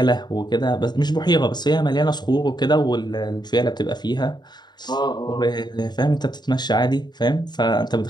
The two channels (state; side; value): late; right; 0.21 ms